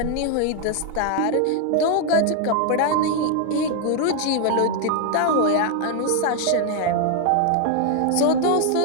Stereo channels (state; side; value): different; both; correlation 0.00